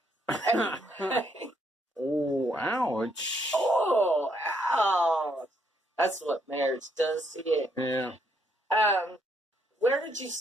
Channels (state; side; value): normal; both; correlation 0.72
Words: Anyway. Oh, ouch. Oh, ouch. That's what marriage does to you. Yeah. Where did you